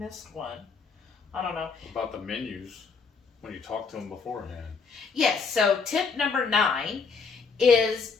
one. I don't know. About the menus when you talk to them beforehand. Yes. So tip number 9 is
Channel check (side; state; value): right; quieter; 5.1 dB